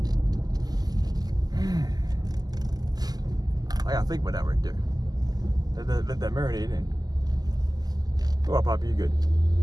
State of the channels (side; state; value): left; late; 0.19 ms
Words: I gotta think about that right there. Let that marinate in. Go up, Poppy, you good.